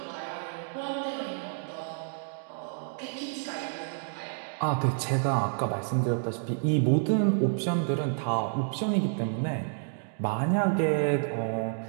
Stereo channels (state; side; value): silent; left; digital silence